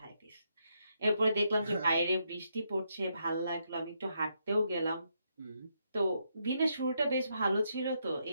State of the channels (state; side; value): inverted; both; correlation -0.79